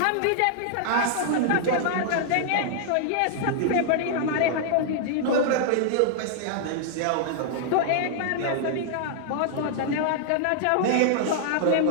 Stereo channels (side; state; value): both; different; correlation -0.01